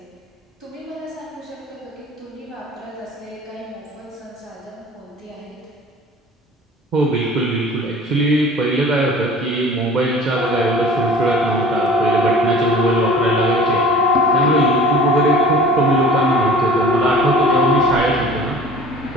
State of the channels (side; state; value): both; normal; correlation 0.45